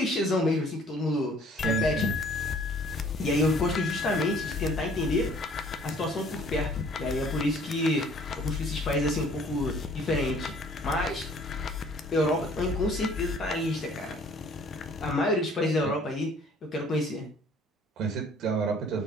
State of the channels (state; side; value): normal; both; correlation 0.55